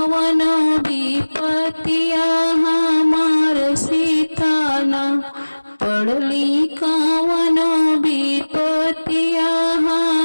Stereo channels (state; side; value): inverted; both; correlation -1.00